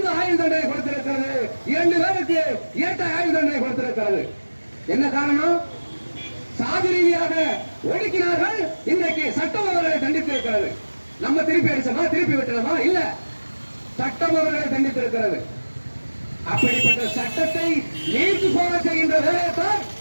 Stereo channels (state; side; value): inverted; both; correlation -1.00